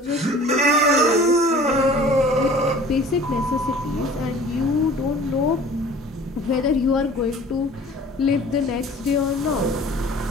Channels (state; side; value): normal; both; correlation 0.47